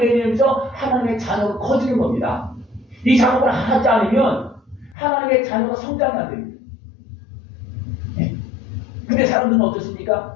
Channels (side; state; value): right; drops out; at 5.0 s